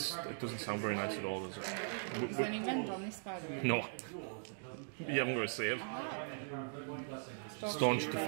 doesn't sound very nice at all, does it? Is there any rend on this, by the way? No. You haven't got a save. Staunch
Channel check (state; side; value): silent; left; digital silence